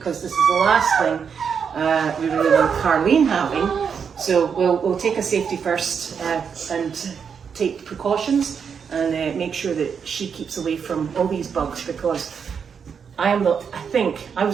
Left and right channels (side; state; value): left; quieter; 6.7 dB